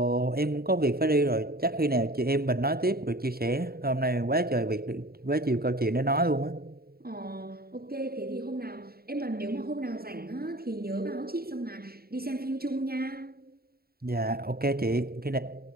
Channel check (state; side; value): late; left; 0.45 ms